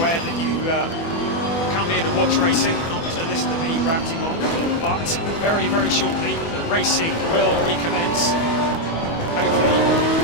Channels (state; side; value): late; right; 24 ms